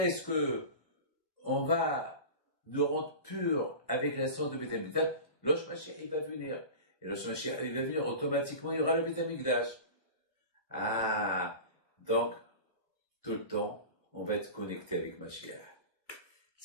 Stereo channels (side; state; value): right; late; 1.2 ms